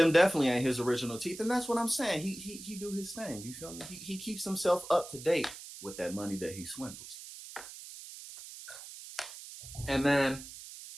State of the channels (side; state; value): right; noise; hiss, 13 dB below the sound